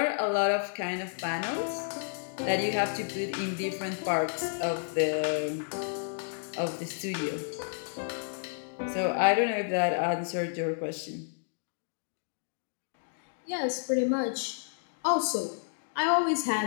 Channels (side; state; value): right; silent; digital silence